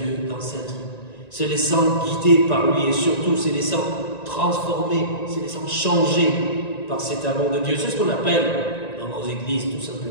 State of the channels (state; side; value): late; right; 1.9 ms